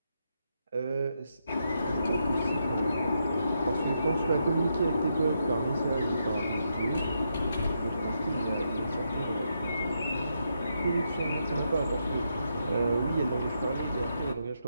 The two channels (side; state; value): both; inverted; correlation -0.81